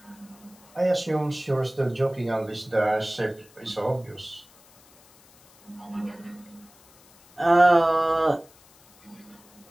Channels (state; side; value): noise; left; hiss, 27 dB below the sound